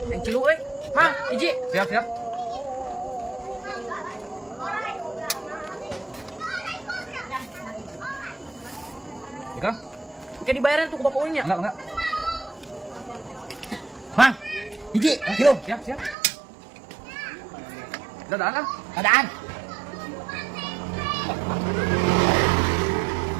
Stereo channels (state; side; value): drops out; left; at 16.2 s